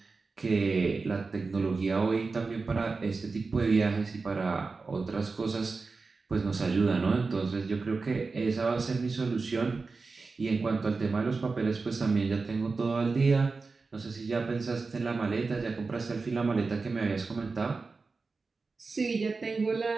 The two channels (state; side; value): quieter; left; 4.1 dB